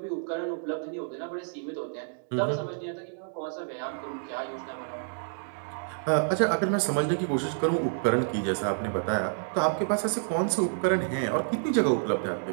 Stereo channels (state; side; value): silent; left; digital silence